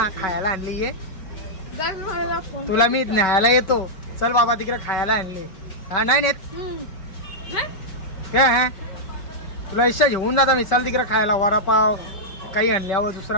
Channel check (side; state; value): right; late; 5.3 ms